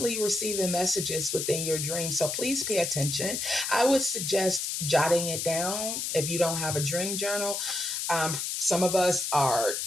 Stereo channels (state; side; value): noise; left; hiss, 2 dB below the sound